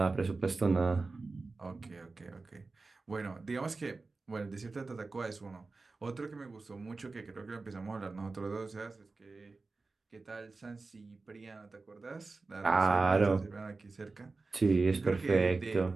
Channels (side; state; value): left; quieter; 3.8 dB